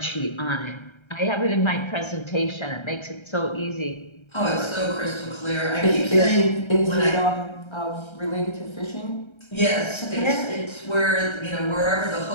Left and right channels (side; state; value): right; late; 1.3 ms